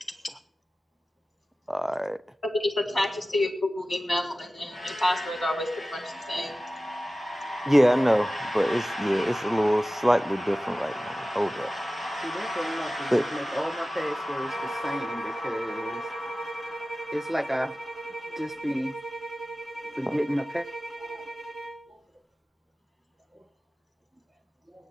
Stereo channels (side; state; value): both; normal; correlation 0.96